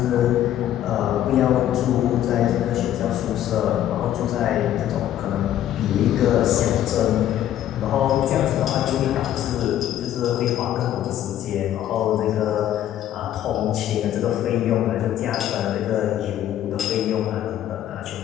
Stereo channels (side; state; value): right; quieter; 11.8 dB